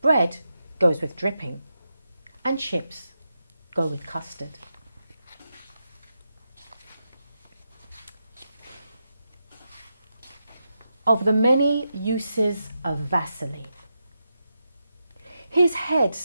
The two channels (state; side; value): inverted; both; correlation -0.87